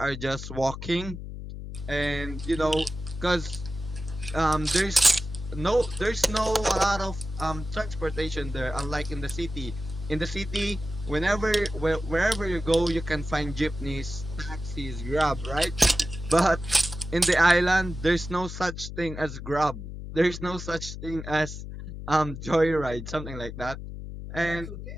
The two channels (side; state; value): left; noise; hum, 9 dB below the sound